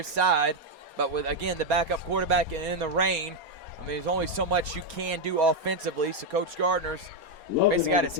side. But with, again, the backup quarterback and in the rain, I mean, there's only so much you can do offensively. So Coach Gardner's basically got his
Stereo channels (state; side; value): late; left; 4.3 ms